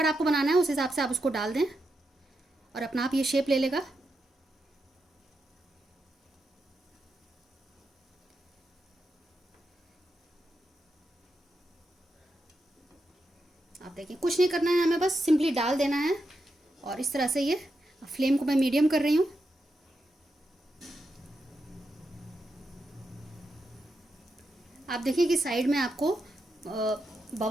आपको बनाना है उस हिसाब से आप उसको डाल दें और अपना आप ये शेप ले लेगा। आप देखिए कुछ नहीं करना है, हमें बस सिंपली डाल देना है। और इस तरह से ये, फ्लेम को मैं मीडियम कर रही हूँ। आप देखिए कि साइड में आपको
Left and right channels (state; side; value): normal; both; correlation 0.86